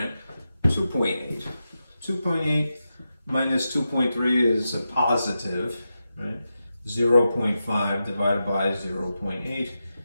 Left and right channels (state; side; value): inverted; both; correlation -0.89